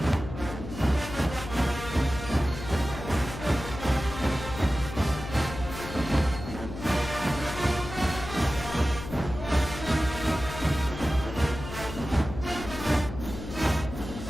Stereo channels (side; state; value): left; noise; hum, 10 dB below the sound